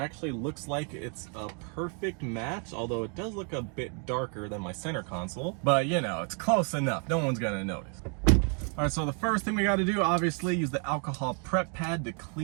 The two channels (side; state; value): left; quieter; 39.1 dB